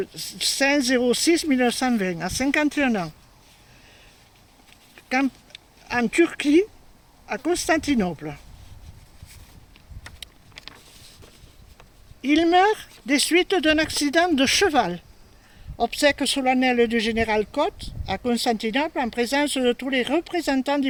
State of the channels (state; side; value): identical; both; correlation 1.00